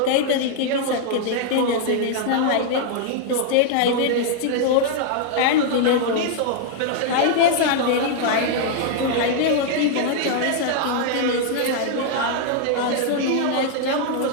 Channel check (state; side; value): different; both; correlation 0.00